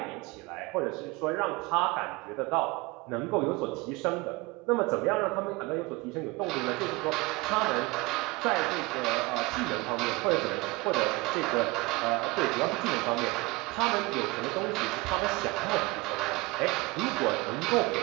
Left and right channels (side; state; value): left; quieter; 23.8 dB